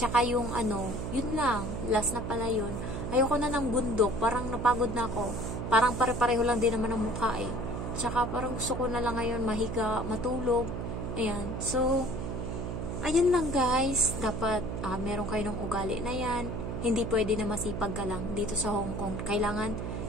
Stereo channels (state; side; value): noise; right; hum, 4 dB below the sound